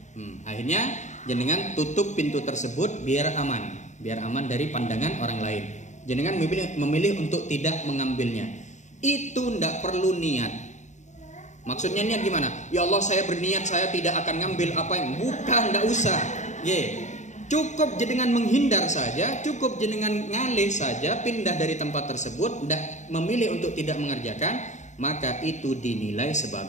Akhirnya jenengan tutup pintu tersebut biar aman dari pandangan orang lain. Jenengan memilih untuk tidak mengambilnya. Itu enggak perlu niat. Maksudnya niat gimana? Ya Allah, saya berniat saya tidak akan ngambil apa yang bukan, enggak usah. Cukup jenengan menghindar saja, cukup jenengan ngalih saja, pindah dari tempat tersebut, tidak memilih untuk tidak mengerjakan, maka itu dinilai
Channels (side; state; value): right; late; 0.35 ms